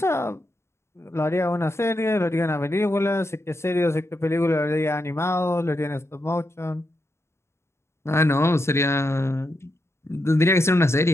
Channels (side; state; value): right; late; 0.13 ms